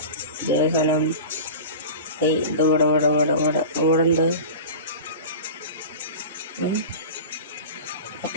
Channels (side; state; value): both; inverted; correlation -0.33